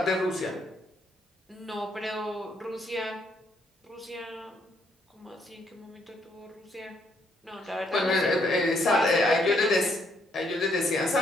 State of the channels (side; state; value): both; normal; correlation 0.71